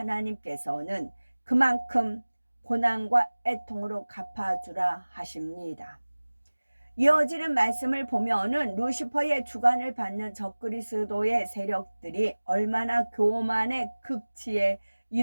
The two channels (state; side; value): inverted; both; correlation -1.00